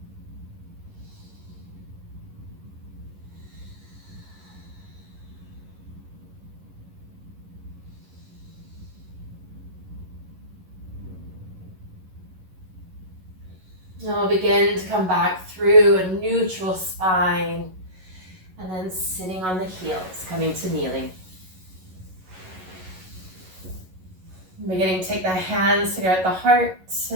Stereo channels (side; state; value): left; late; 11 ms